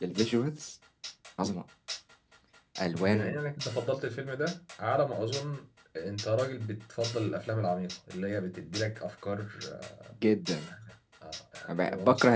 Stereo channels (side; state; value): both; identical; correlation 1.00